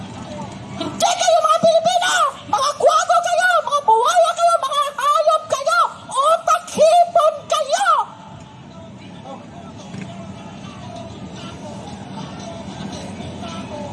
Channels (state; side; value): identical; both; correlation 1.00